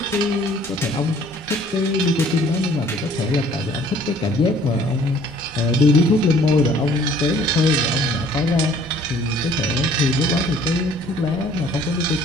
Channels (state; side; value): normal; both; correlation 0.56